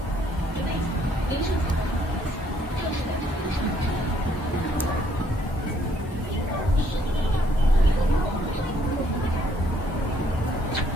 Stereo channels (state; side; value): normal; both; correlation 0.67